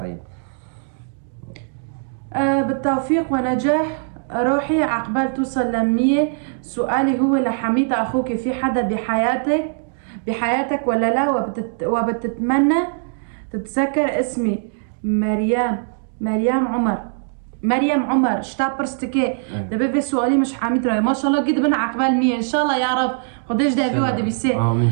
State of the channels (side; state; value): left; silent; digital silence